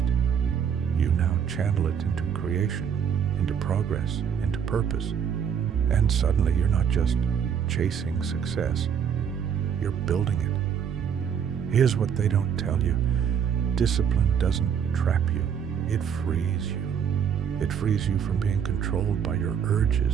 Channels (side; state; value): left; quieter; 7.8 dB